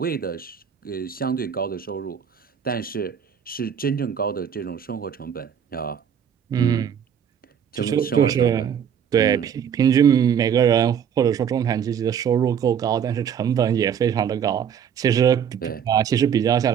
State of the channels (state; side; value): quieter; left; 8.1 dB